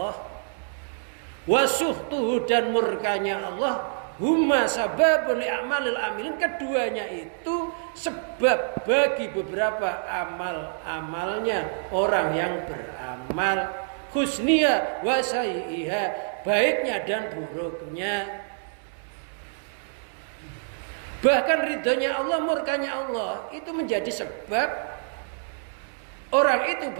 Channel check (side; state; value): left; silent; digital silence